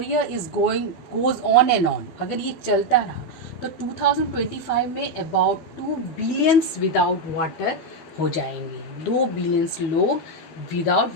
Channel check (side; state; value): right; late; 12 ms